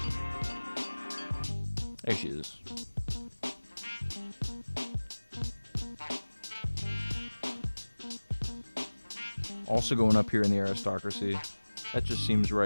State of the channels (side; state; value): both; inverted; correlation -1.00